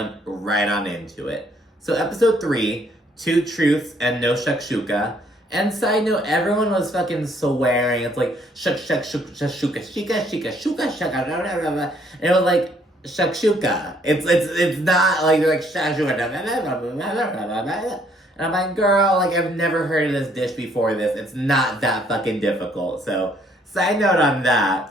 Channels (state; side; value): normal; both; correlation 0.66